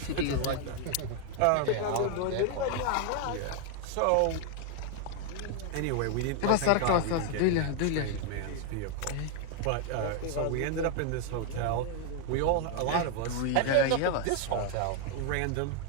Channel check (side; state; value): both; different; correlation 0.00